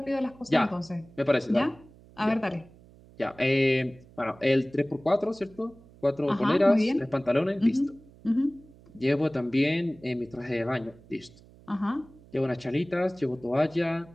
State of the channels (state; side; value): noise; right; hum, 24 dB below the sound